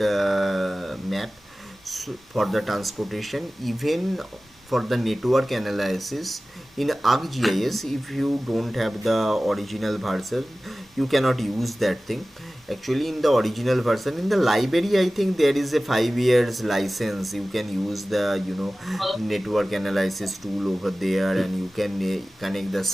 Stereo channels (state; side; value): normal; both; correlation 0.97